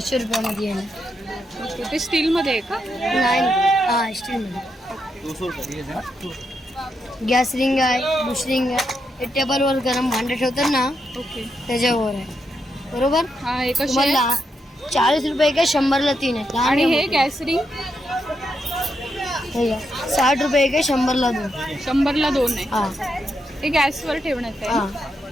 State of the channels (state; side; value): normal; both; correlation 0.82